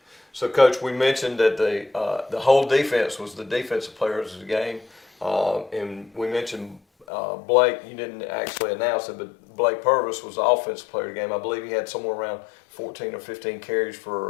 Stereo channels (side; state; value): right; drops out; at 7.1 s